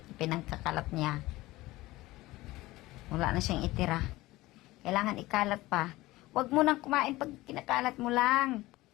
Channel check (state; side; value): quieter; right; 18.8 dB